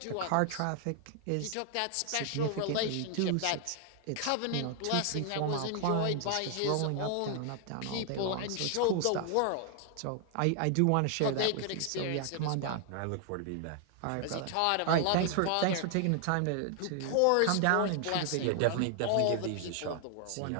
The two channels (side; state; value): both; different; correlation 0.00